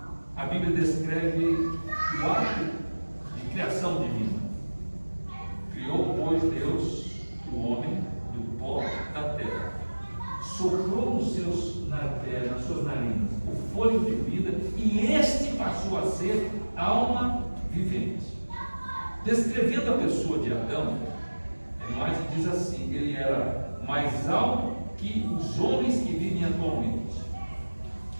a Bíblia descreve o ato de criação divina. Criou, pois, Deus o homem do pó da terra, soprou nas suas narinas o fôlego de vida, e este passou a ser alma vivente. Descrevendo a pessoa de Adão, mais diz assim: ele era mais alto que os homens que vivem atualmente.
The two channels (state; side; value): inverted; both; correlation -1.00